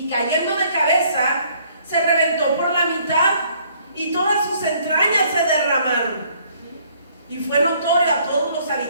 cayendo de cabeza, se reventó por la mitad y todas sus entrañas se derramaron. Y fue notorio a todos los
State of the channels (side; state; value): both; inverted; correlation -0.62